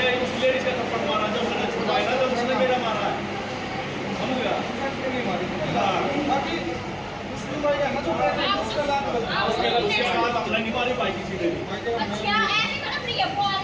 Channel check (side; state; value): both; identical; correlation 1.00